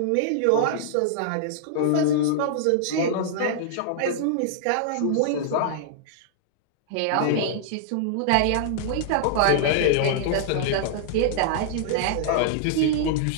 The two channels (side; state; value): both; different; correlation -0.01